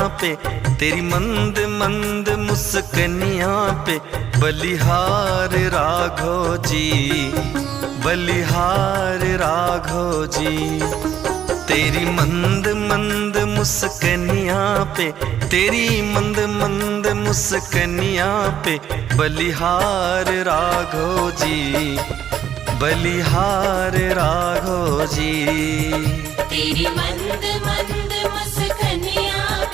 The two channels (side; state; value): left; quieter; 9.8 dB